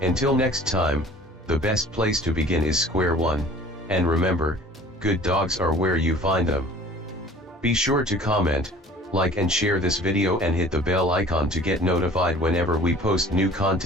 Until next time, the best place to begin is square one, and remember, good dogs are where you find them. Be sure to comment, like and share this video and hit the bell icon to get notified whenever we post new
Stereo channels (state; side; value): normal; both; correlation 0.48